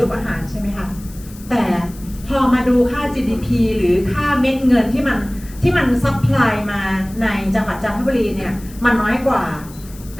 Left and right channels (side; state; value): left; noise; hiss, 21 dB below the sound